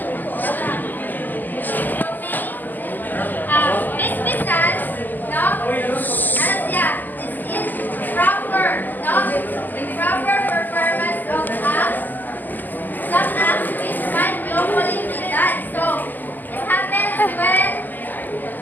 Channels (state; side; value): late; right; 0.086 ms